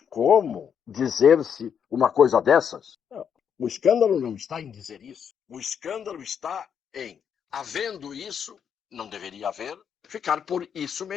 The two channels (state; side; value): quieter; right; 7.7 dB